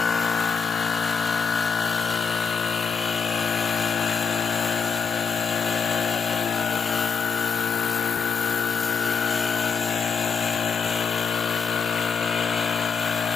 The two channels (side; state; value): right; quieter; 6.0 dB